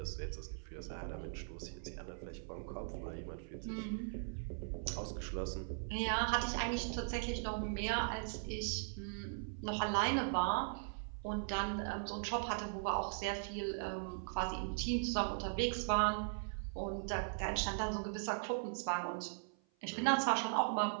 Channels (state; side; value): silent; left; 51 dB below the other